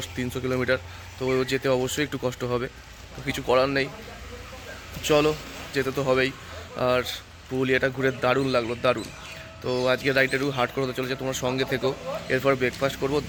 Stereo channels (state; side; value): identical; both; correlation 1.00